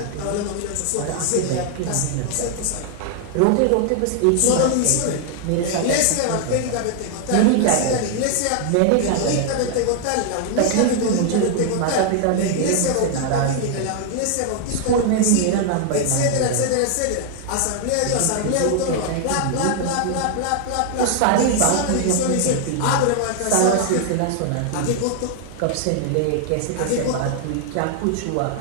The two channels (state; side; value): different; both; correlation 0.00